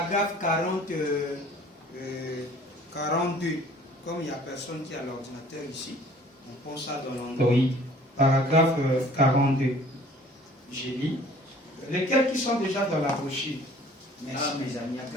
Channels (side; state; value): both; normal; correlation 0.52